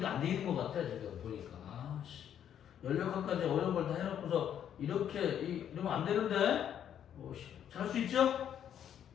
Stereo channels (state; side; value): quieter; right; 9.6 dB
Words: 안 돼 있는 것 같아. 지금 보니까. 아씨. 16학까지 어려운 걸 다 해놓고서 이렇게 이러면 안 되는데. 잘 할 수 있죠?